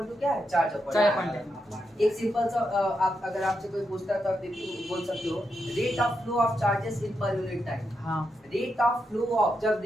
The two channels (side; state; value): both; normal; correlation 0.84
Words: टू क्या है? Charge upon time. एक सिंपल सा आप अगर आपसे कोई पूछता है तो आप बोल सकते हो rate of flow of charges in per unit time. Rate of flow of, जब